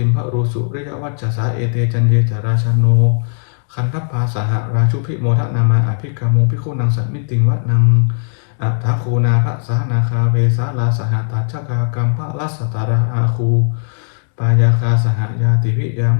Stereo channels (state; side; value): silent; right; digital silence